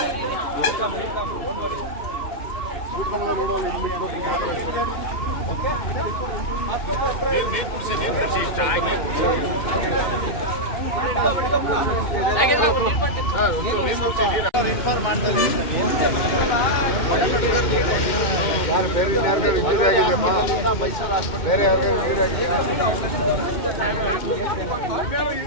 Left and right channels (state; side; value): late; right; 2.1 ms